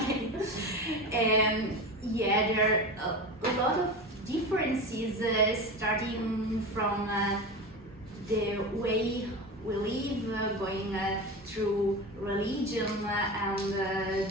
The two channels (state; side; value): normal; both; correlation 0.26